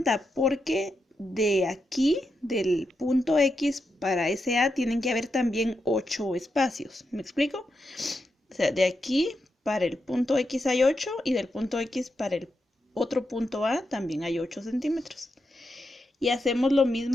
porque de aquí, del punto X para ese A, tienen que haber también 8 espacios. ¿Me explico? O sea, de aquí para el punto X hay 8 y del punto X para el otro punto A también hay 8 centímetros. Y hacemos lo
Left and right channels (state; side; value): normal; both; correlation 0.85